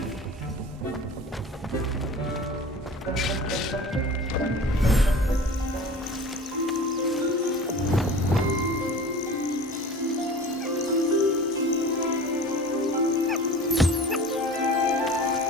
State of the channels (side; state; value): both; normal; correlation 0.39